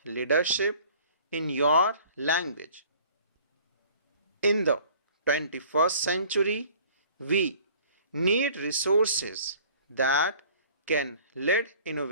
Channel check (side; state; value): both; inverted; correlation -0.51